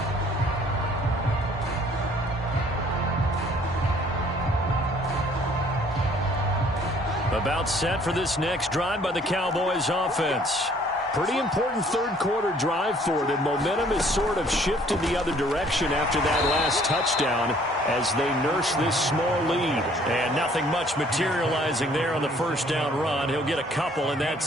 About set for this next drive by the Cowboys offense. Pretty important third quarter drive for them. Momentum has sort of shifted the other direction after that last touchdown as they nurse this small lead. And nothing much materializing there on the first down run. He'll get a couple and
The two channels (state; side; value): normal; both; correlation 0.59